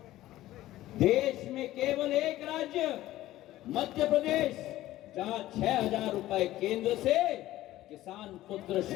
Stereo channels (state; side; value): quieter; right; 15.3 dB